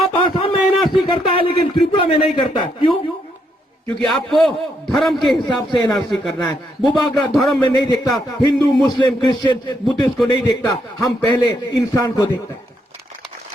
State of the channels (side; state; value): both; normal; correlation 0.76